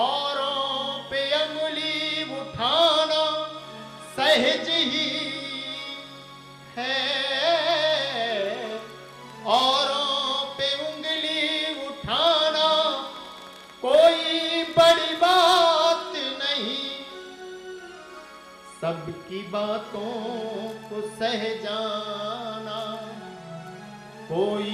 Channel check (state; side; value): identical; both; correlation 1.00